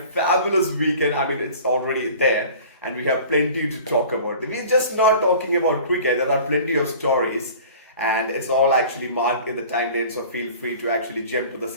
weekend. I mean, it's already there, and we have plenty to talk about. We're just not talking about cricket, there are plenty of stories, and it's all actually marked in the timeline. So feel free to actually jump to the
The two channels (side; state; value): both; inverted; correlation -0.44